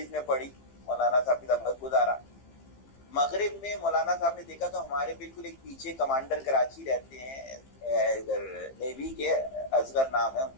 میں پڑھی, مولانا صاحب کے ساتھ گزارا. مغرب میں مولانا صاحب نے دیکھا تو ہمارے بالکل ایک پیچھے کمانڈر کراچی رہتے ہیں, ادھر نیوی کے, اصغر نام ہے ان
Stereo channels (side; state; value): right; late; 15 ms